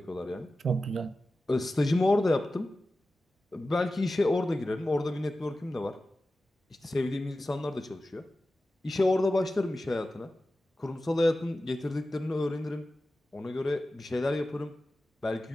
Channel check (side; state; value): both; normal; correlation 0.94